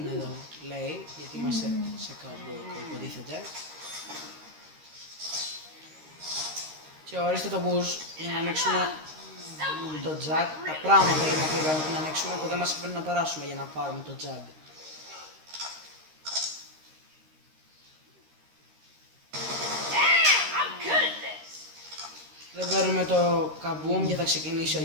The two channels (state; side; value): late; left; 13 ms